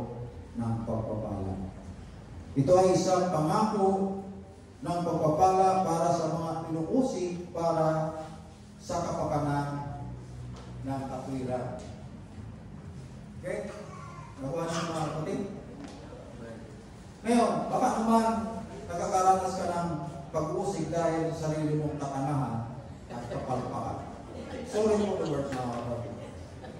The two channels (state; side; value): identical; both; correlation 1.00